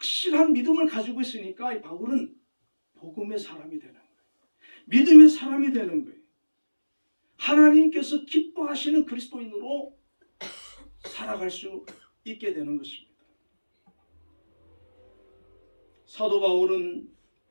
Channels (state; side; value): inverted; both; correlation -1.00